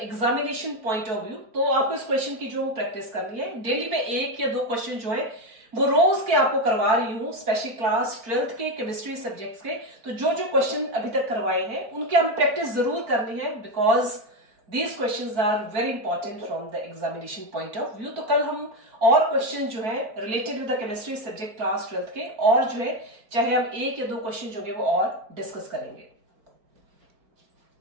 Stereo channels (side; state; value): left; late; 4.5 ms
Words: examination point of view. तो आपको इस question की जो practice करनी है, daily में 1 या 2 question जो है वो रोज के आपको करवा रही हूँ, स्पेशली क्लास 12th के केमिस्ट्री सब्जेक्ट्स के। तो जो जो क्वेश्चन अभी तक करवाए हैं उनकी हमें प्रैक्टिस जरूर करनी है, because These questions are very important from the examination point of view. तो कल हम और क्वेश्चन जो है related with the chemistry subject class 12th के और जो है चाहे हम 1 या 2 क्वेश्चन जो है वो और डिस्कस करेंगे।